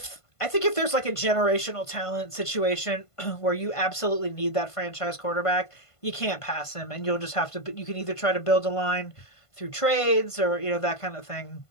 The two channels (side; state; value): right; late; 1.5 ms